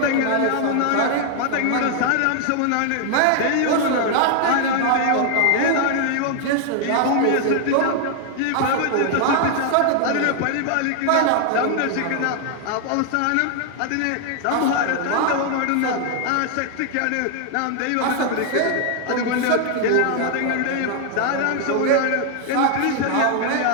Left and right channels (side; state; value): both; different; correlation 0.00